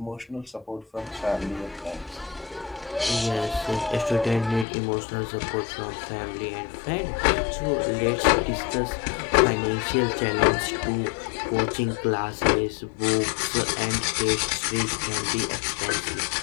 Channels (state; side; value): drops out; right; at 4.7 s